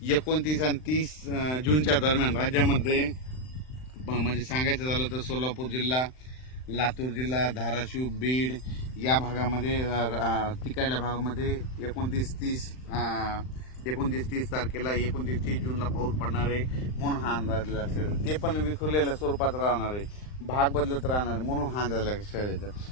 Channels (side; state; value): right; late; 39 ms